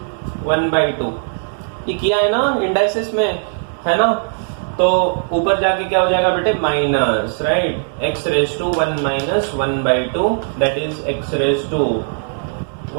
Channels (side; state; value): left; silent; 67 dB below the other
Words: 1/2। ये किया है ना इंडाइसिस में, है ना। तो ऊपर जाके क्या हो जाएगा बेटे, minus, right, x raise to 1 minus 1/2 that is x raise to